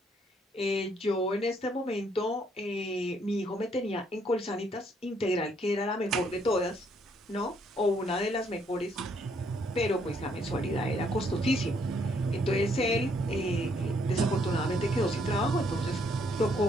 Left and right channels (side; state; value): both; normal; correlation 0.69